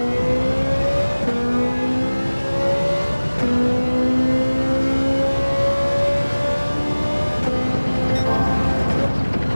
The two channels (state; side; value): inverted; both; correlation -1.00